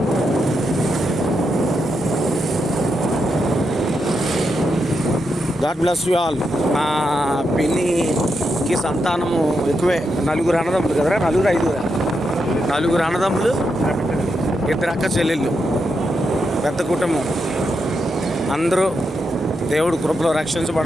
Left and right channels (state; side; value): normal; both; correlation 0.84